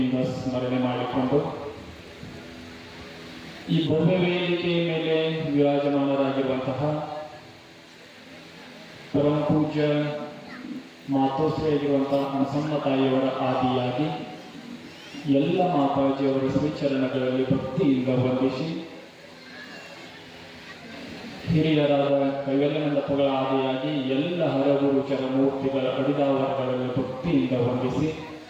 ಸ್ಮರಣೆ ಮಾಡಿಕೊಂಡು, ಈ ಭವ್ಯ ವೇದಿಕೆಯ ಮೇಲೆ ವಿರಾಜಮಾನರಾಗಿರುವಂತಹ ಪರಮ ಪೂಜ್ಯ ಮಾತೋಶ್ರೀಯಾಗಿರುವಂತಹ ಅನಸಮ್ಮ ತಾಯಿಯವರ ಆದಿಯಾಗಿ ಎಲ್ಲ ಮಾತಾಜಿಯವರ ಶ್ರೀಚರಣಗಳಲ್ಲಿ ಭಕ್ತಿಯಿಂದ ವಂದಿಸಿ, ಹಿರಿಯರಾದ ಕೈವಲ್ಯನಂದಪ್ಪಗಳ ಆದಿಯಾಗಿ ಎಲ್ಲ ಹರಗುರು ಚರಮೂರ್ತಿಗಳ ಅಡಿದಾವರಗಳಲ್ಲಿ ಭಕ್ತಿಯಿಂದ ವಂದಿಸಿ,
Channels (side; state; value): both; identical; correlation 1.00